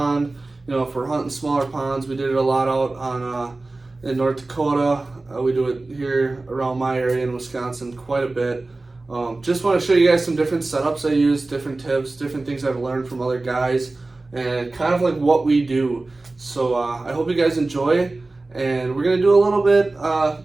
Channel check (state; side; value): quieter; left; 3.2 dB